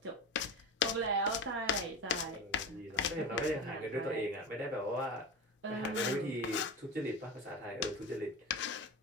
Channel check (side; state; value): both; normal; correlation 0.26